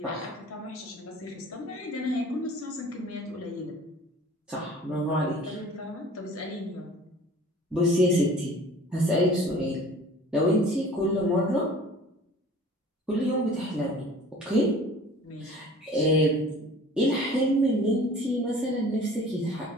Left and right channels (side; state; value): both; normal; correlation 0.46